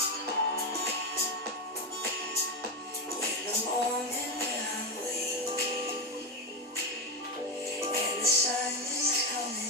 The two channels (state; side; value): normal; both; correlation 0.12